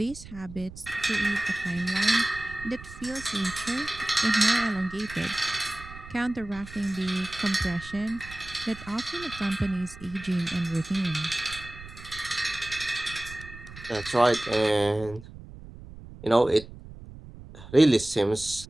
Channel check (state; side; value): noise; right; rumble, 16 dB below the sound